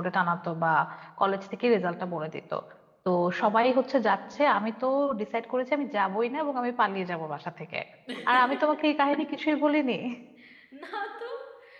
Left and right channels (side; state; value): both; identical; correlation 1.00